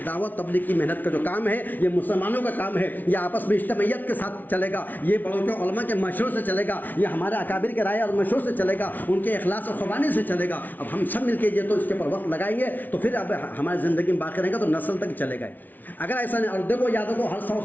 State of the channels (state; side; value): late; right; 0.083 ms